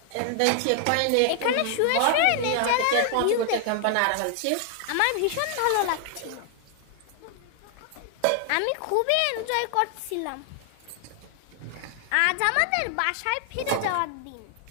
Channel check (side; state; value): both; different; correlation 0.00